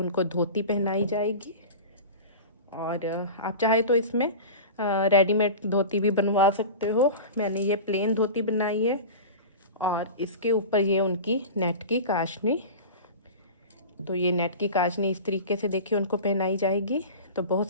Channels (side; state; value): both; inverted; correlation -0.32